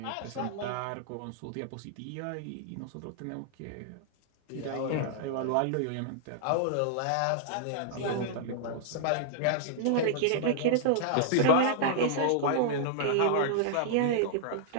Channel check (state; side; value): different; both; correlation -0.01